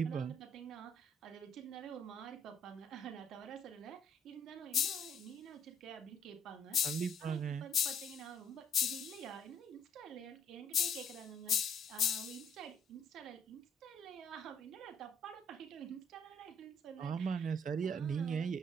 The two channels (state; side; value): normal; both; correlation 0.64